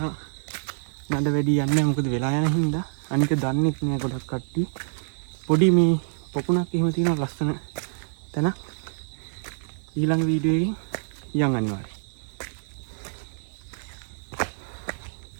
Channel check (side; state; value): left; silent; digital silence